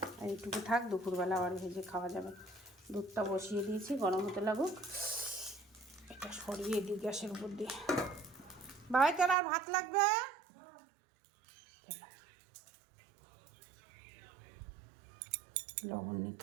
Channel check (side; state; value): left; drops out; at 9.3 s